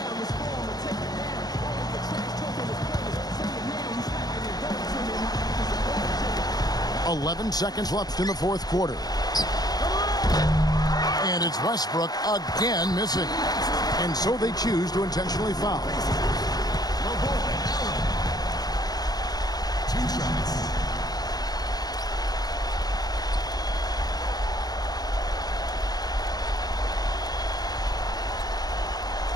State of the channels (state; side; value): late; right; 0.19 ms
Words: "11 seconds left in the fourth quarter. And it's Westbrook again missing. and so they choose to intentionally foul. Two shots.